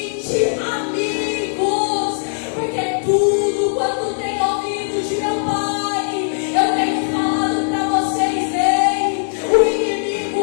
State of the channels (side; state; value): right; silent; digital silence